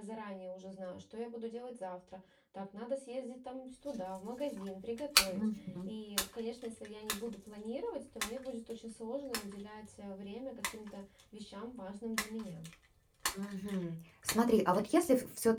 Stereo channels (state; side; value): identical; both; correlation 1.00